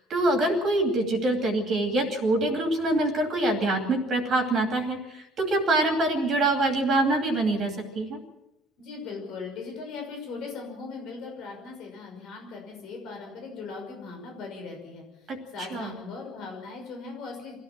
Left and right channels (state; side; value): normal; both; correlation 0.56